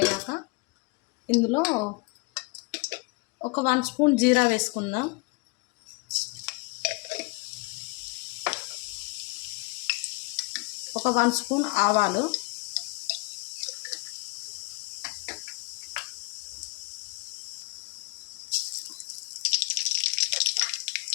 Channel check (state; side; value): quieter; right; 29.0 dB